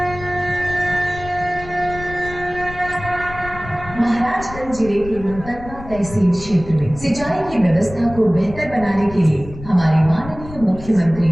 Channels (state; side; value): noise; left; rumble, 14 dB below the sound